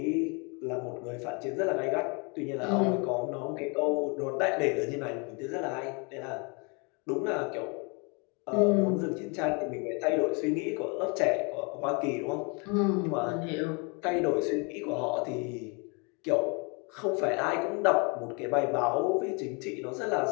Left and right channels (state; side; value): quieter; right; 32.7 dB